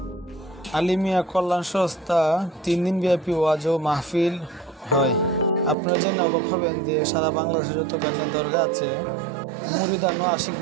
আলিমিয়া কল্যাণ সংস্থা 3 দিন ব্যাপী ওয়াজ ও মাহফিল হয়। আপনারা জেনে অবাক হবেন যে সারা বাংলাদেশে যত কারণে দরগা আছে, মুরিদান ও আশিক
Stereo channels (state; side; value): drops out; left; at 5.8 s